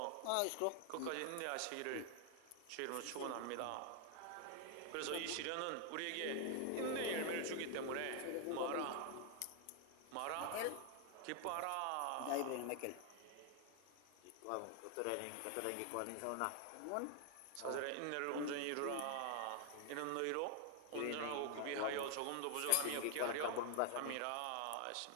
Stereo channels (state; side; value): different; both; correlation 0.00